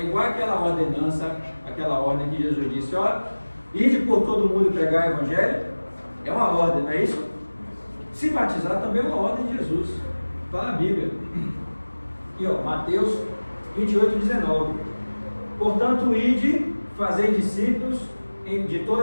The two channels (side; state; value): both; inverted; correlation -1.00